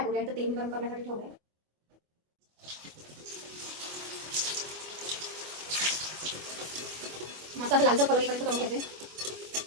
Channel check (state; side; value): late; left; 25 ms